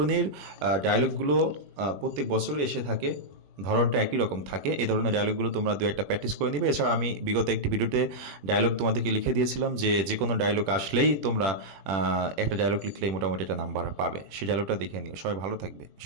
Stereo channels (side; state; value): left; late; 21 ms